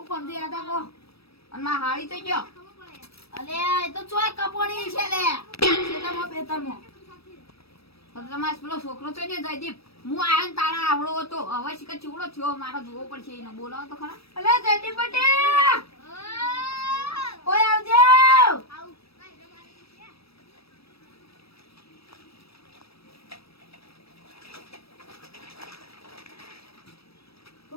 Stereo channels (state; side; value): late; right; 0.77 ms